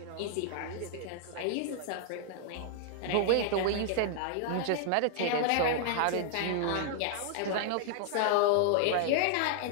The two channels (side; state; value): both; different; correlation -0.01